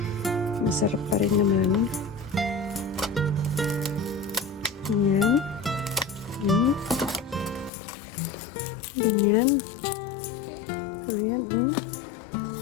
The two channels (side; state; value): right; drops out; at 7.7 s